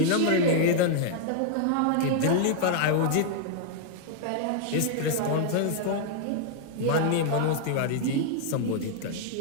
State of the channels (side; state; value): both; different; correlation -0.01